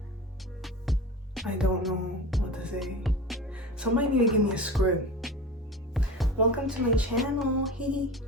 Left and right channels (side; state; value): both; normal; correlation 0.33